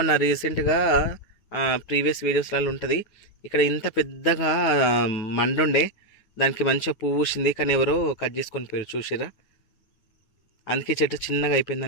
రీసెంట్గా ప్రీవియస్ వీడియోస్లలో ఉంటుంది. ఇక్కడ ఇంత పెద్దగా మండుండే, దానికి మంచిగా పువ్వు పూసింది. కానీ ఎవరో కట్ చేసుకొని పోయారు, చూసిరా. అందుకే చెట్టు చిన్నగా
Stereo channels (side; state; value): right; late; 9.4 ms